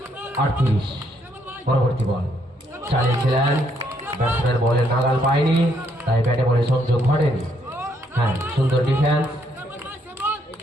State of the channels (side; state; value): both; normal; correlation 0.72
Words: 38। পরবর্তী বল। চালিয়েছিলেন ব্যাটসম্যান বলের নাগাল পায়নি, তাই ব্যাটে বলে সংযোগ ঘটেনি। হ্যাঁ, সুন্দর ডিফেন্স।